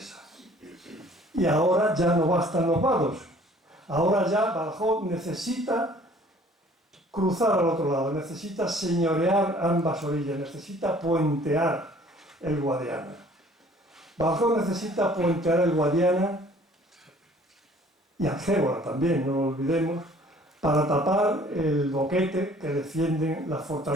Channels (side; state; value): both; normal; correlation 0.54